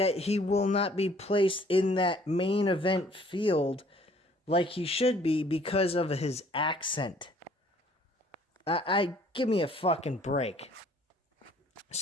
he will not be placed in that main event field like he should be because of his accent. Give me a fucking break.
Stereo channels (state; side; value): normal; both; correlation 0.58